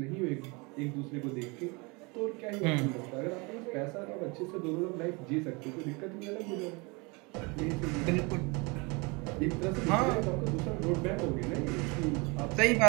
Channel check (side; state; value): left; quieter; 28.3 dB